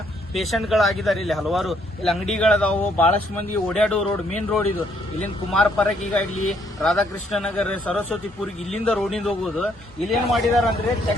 ಪೇಷಂಟ್ಗಳಾಗಿದ್ದಾರೆ. ಇಲ್ಲಿ ಹಲವಾರು ಇಲ್ಲಿ ಅಂಗಡಿಗಳದಾವು, ಬಹಳಷ್ಟು ಮಂದಿ ಓಡಾಡೋ ರೋಡ್, ಮೇನ್ ರೋಡ್ ಇದು. ಇಲ್ಲಿಂದ ಕುಮಾರ ಪರಕಿಗಾಗ್ಲಿ, ರಾಧಾಕೃಷ್ಣ ನಗರ್, ಸರಸ್ವತಿಪುರಿಗೆ ಇಲ್ಲಿಂದ ರೋಡಿಂದ ಹೋಗೋದು. ಇಲ್ಲೇನ್ ಮಾಡಿದಾರೆ ಅಂದ್ರೆ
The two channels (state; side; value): normal; both; correlation 0.69